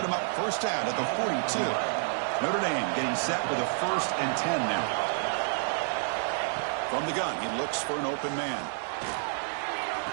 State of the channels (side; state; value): left; silent; digital silence